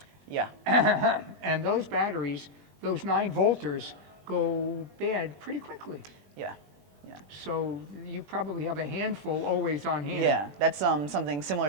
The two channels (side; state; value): left; late; 21 ms